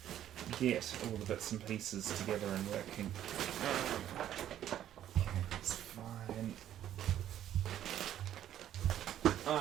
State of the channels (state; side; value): quieter; left; 11.4 dB